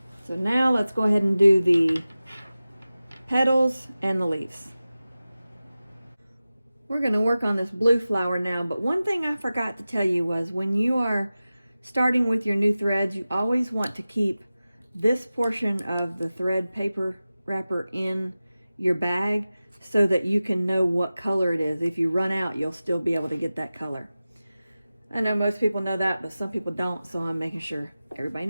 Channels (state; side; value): inverted; both; correlation -0.95